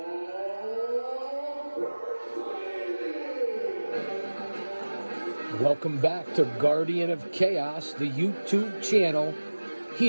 Wrestling! Welcome back to Guardian of Chaos, the YouTube channel,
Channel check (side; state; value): both; inverted; correlation -1.00